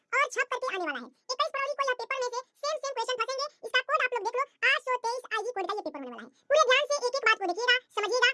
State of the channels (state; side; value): identical; both; correlation 1.00